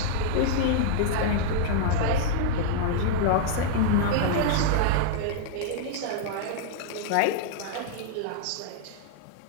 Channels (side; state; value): both; different; correlation -0.01